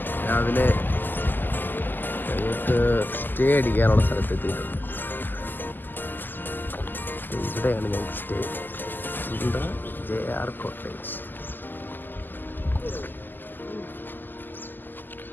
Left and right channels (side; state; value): right; late; 0.090 ms